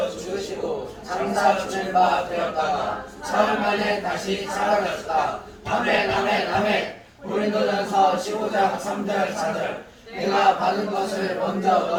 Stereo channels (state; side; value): identical; both; correlation 1.00